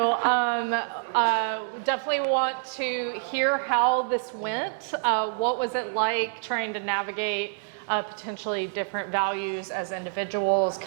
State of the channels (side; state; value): left; silent; 60 dB below the other